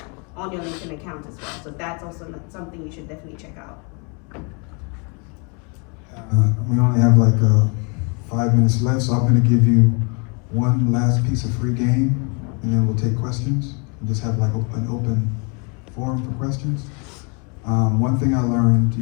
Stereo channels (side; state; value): right; quieter; 34.5 dB